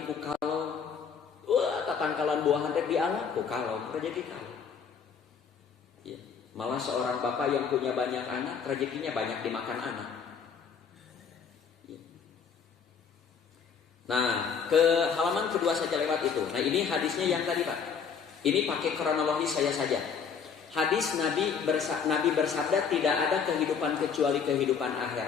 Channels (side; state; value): right; quieter; 6.4 dB